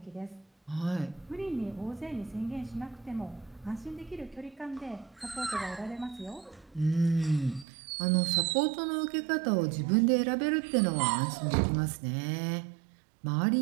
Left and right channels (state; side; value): drops out; left; at 7.7 s